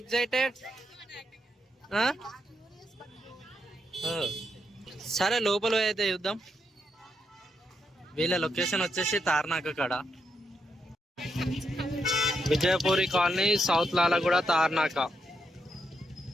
సరే లోపల అయితే చూద్దాం. వీళ్ళ లొకేషన్ వచ్చేసి తార్నాక కాడ, Vijayapuri colony, south Lalaguda, Tarnaka.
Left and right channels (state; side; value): normal; both; correlation 0.81